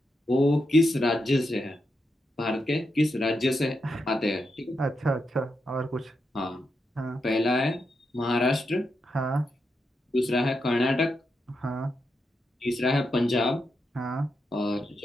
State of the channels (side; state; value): both; normal; correlation 0.85